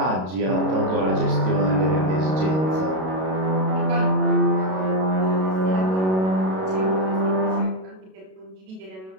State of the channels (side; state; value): left; late; 32 ms